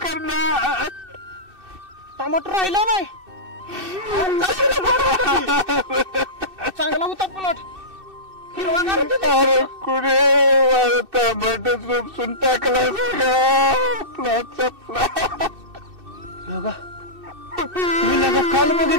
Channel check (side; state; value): left; late; 2.6 ms